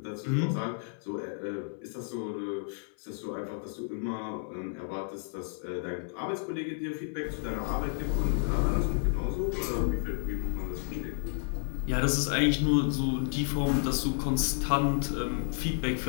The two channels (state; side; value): silent; right; 57 dB below the other